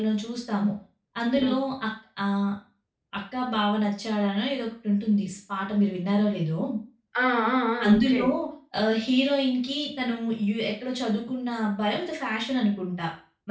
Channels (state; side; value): identical; both; correlation 1.00